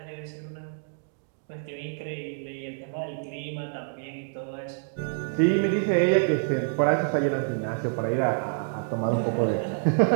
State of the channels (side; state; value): left; silent; digital silence